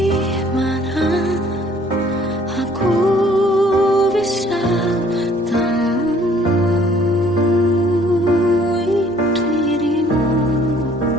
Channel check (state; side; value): normal; both; correlation 0.58